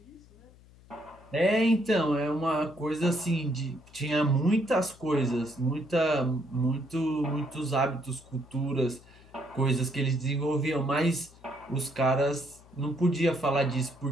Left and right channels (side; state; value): left; noise; hum, 25 dB below the sound